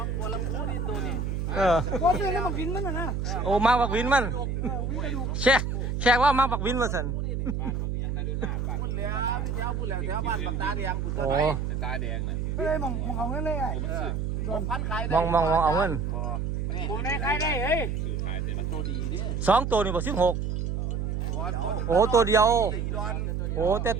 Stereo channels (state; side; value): noise; right; hum, 1 dB below the sound